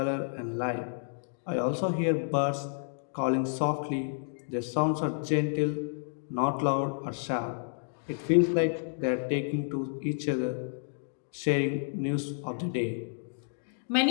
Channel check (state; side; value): silent; right; digital silence